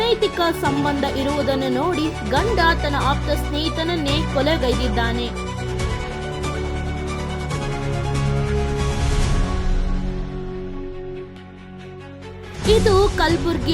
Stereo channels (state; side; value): identical; both; correlation 1.00